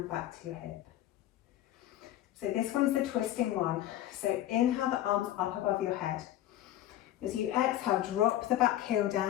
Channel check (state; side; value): quieter; right; 13.3 dB